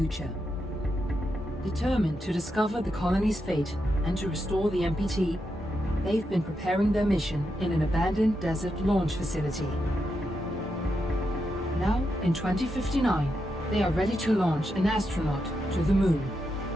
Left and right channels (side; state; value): both; normal; correlation 0.85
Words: Determined to discover the colony's fate and to restore the MPT, they've been preparing their mission in an abandoned desert launch facility. Now, in 2059, they are ready to launch an astronaut to the Moon.